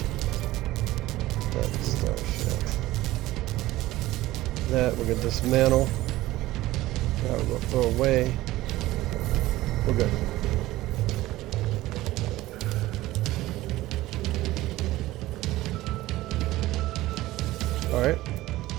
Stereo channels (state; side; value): quieter; left; 17.0 dB